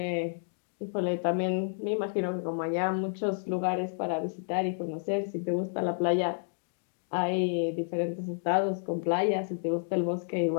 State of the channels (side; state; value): right; silent; digital silence